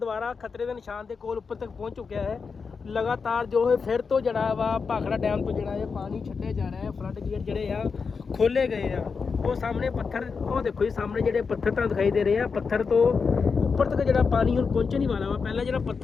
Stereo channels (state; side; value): quieter; right; 5.3 dB